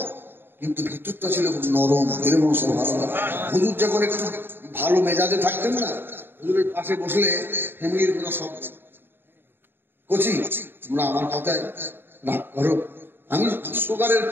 কিন্তু ভিতরটা ছিল খুব নরম। এরকম সুবহানাল্লাহ। হুজুর যখন একটু ভালো মেজাজে থাকতেন না, হুজুরের পাশে বসলে ফ্যামিলির কোনো শব্দ কচি তোমরা আমার কথায় রাগ করো, আমি সুগারের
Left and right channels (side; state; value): left; late; 0.10 ms